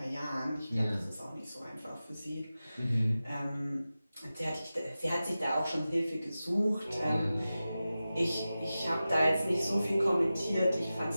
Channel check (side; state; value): both; inverted; correlation -0.95